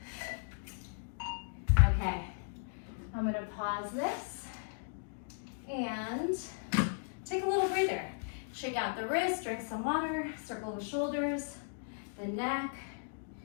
Okay, I'm gonna pause this and take a little breather. Shake out the wrist, drink some water, circle the shoulders, the neck,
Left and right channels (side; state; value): right; silent; digital silence